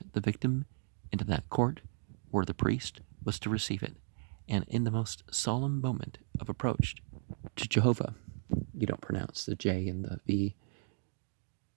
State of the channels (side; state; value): left; silent; digital silence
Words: the victim into that court where the priest was to receive it, and in the most solemn moment of approach to Jehovah, you don't pronounce the J and the V,